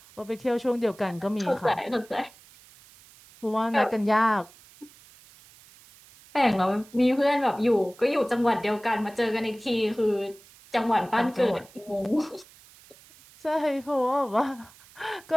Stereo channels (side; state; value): right; noise; hiss, 24 dB below the sound